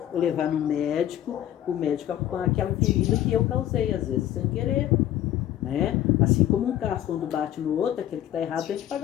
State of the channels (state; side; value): quieter; right; 12.1 dB